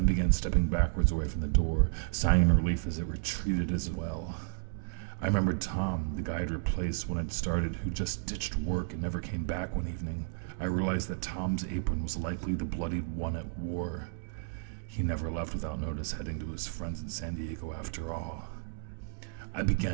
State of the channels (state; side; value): silent; left; digital silence